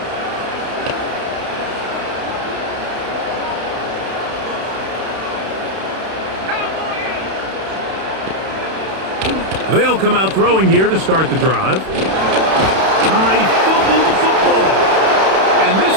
They'll come out throwing here to start the drive. I fumbled the football. And this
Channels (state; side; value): late; left; 31 ms